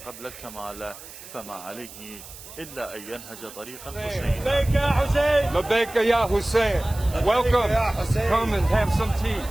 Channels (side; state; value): right; noise; hiss, 16 dB below the sound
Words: قبل الكمال فما عليه إلا أن ينهج طريق الحسين. لبيك يا حسين. لبيك يا حسين. Welcome. Come and have some tea.